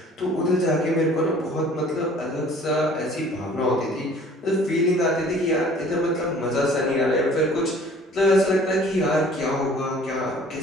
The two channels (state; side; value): normal; both; correlation 0.51